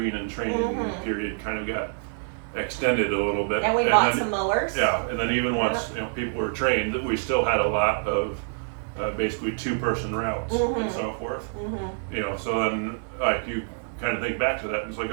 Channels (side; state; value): left; silent; digital silence